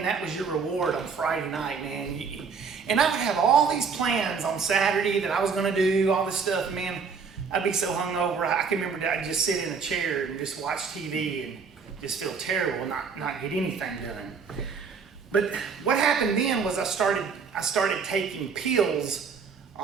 that was your reward on Friday night, man. And I would have all these plans on Saturday that I was going to do, all this stuff, man. I'd be so hungover. I can remember that I'd just sit in a chair and just watch TV and just feel terrible and not get anything done. But what happened then was I started taking pills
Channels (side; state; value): left; quieter; 5.6 dB